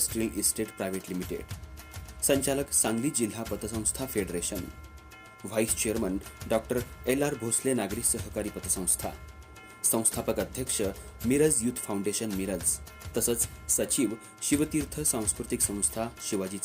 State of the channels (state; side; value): identical; both; correlation 1.00